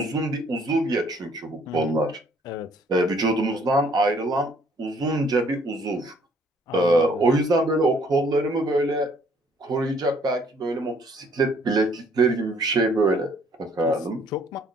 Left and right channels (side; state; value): both; normal; correlation 0.62